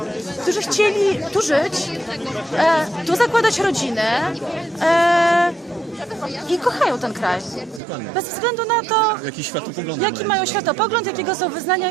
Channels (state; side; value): drops out; left; at 7.8 s